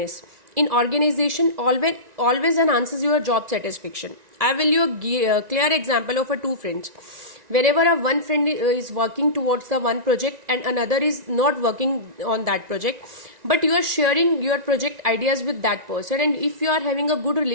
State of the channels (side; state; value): left; late; 1.9 ms